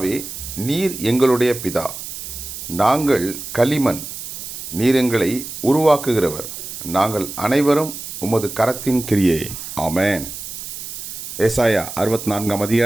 நீர் எங்களுடைய பிதா, நாங்கள் களிமண், நீர் எங்களை உருவாக்குகிறவர், நாங்கள் அனைவரும் உமது கரத்தின் கிரியே. ஆமென். ஏசாயா 64ஆம்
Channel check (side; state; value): right; noise; hiss, 9 dB below the sound